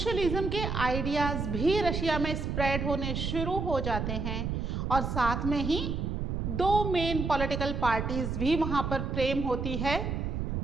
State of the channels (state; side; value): noise; right; rumble, 2 dB below the sound